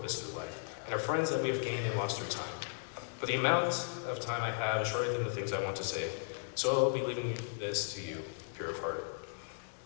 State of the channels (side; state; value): right; silent; digital silence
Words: through life, and our friends that we have gained and lost through time. But the amount of time I have is shorter than the things I want to say, so I'll be leaving this to you, pure of heart.